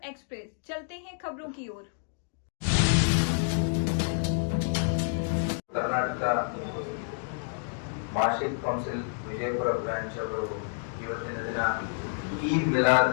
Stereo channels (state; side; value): silent; right; digital silence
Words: एक्सप्रेस। चलते हैं खबरों की ओर। कर्नाटक ಮಾರ್ಷಿಕ್ ಕೌನ್ಸಿಲ್ ವಿಜಯಪುರ ಬ್ರಾಂಚ್ ಅವರು ಇವತ್ತಿನ ದಿನ ಈದ್ ಮಿಲಾದ್